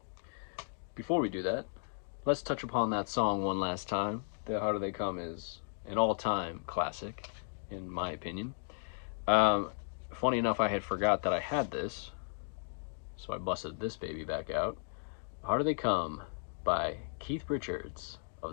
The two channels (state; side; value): silent; right; digital silence